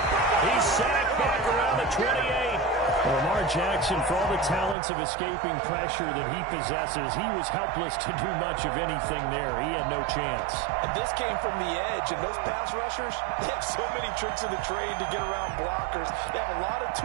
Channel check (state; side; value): drops out; left; at 4.8 s